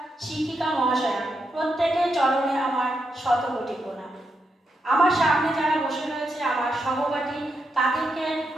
শিক্ষিকা মহাশয়া, প্রত্যেকের চরণে আমার শতকোটি প্রণাম। আমার সামনে যারা বসে রয়েছে আমার সহপাঠী, তাদেরকে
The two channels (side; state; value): both; normal; correlation 0.83